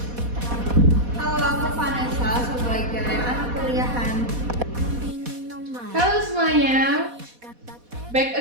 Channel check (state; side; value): late; left; 4.1 ms